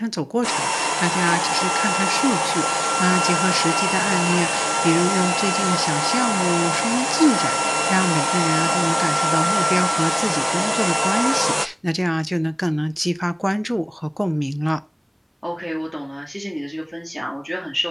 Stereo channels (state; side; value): identical; both; correlation 1.00